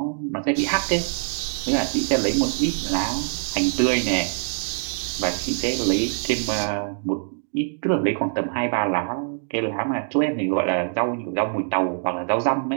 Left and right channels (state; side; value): silent; left; digital silence